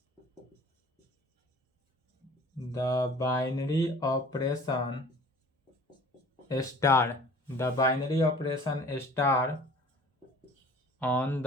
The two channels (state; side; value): normal; both; correlation 0.47